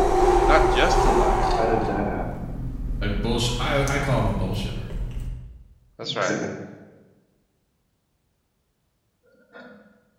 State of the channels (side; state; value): both; identical; correlation 1.00